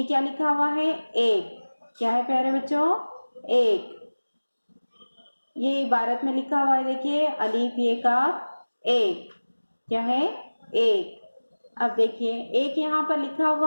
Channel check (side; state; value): both; inverted; correlation -1.00